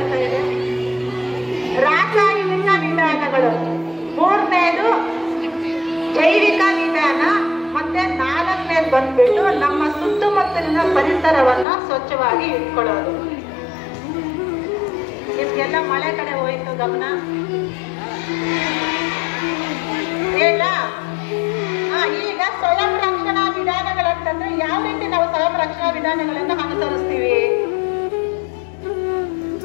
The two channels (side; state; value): right; drops out; at 11.7 s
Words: ಇದೆ ರಾಸಾಯನಿಕ ವಿಧಾನಗಳು, ಮೂರನೇದು ಜೈವಿಕ ವಿಧಾನ, ಮತ್ತೆ 4ನೇದು ಬಂದ್ಬಿಟ್ಟು ನಮ್ಮ ಸುತ್ತಮುತ್ತಲಿನ ಪರಿಸರವನ್ನ ಸ್ವಚ್ಛವಾಗಿ ಇಟ್ಕೊಳ್ಳೋದು. ನಿಮ್ಗೆಲ್ಲ ಮಳೆ ಕಡೆ ಹೋಯ್ತು ಗಮನ ಹೇಳ. ಈಗ ಸ್ವಯಂ ರಕ್ಷಣಾ ವಿಧಾನಗಳಂತಂದ್ರೆ ಯಾವ ರೀತಿ ನಾವು ಸ್ವಯಂ ರಕ್ಷಣಾ ವಿಧಾನಗಳನ್ನ ಅನುಸರಿಸ್ತೀವಿ?